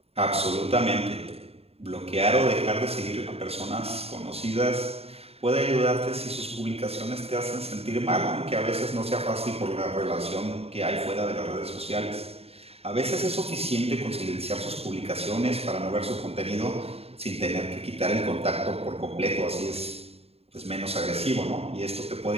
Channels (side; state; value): left; late; 0.29 ms